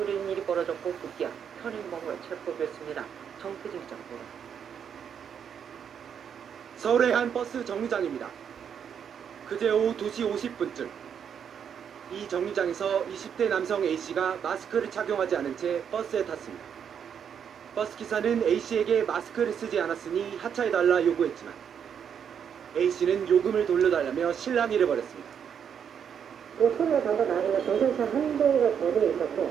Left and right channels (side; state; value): left; quieter; 7.9 dB